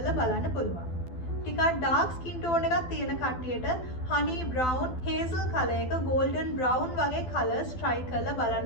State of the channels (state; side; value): late; right; 12 ms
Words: බලන්න පුළුවන්. ටිකක් dark skin tone එකක් තියෙන කට්ටියට honey brown hazel color එක golden brown වගේ colors try කරලා